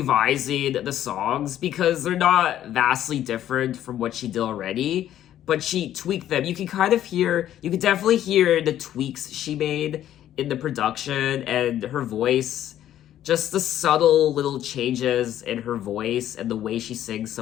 the songs because they're not vastly different from what she did already, but she tweaked them. You can definitely hear the tweaks she made in the production and her voice, just the subtle little changes in her voice and the way she sings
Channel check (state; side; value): quieter; right; 11.7 dB